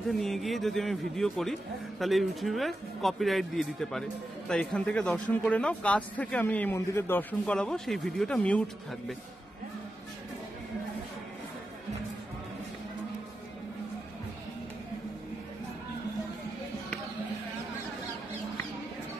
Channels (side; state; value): both; normal; correlation 0.90